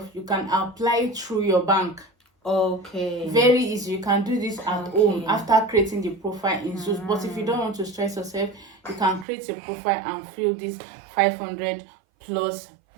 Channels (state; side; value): drops out; left; at 9.2 s